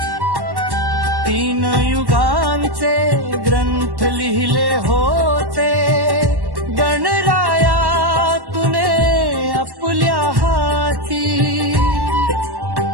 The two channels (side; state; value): left; late; 1.1 ms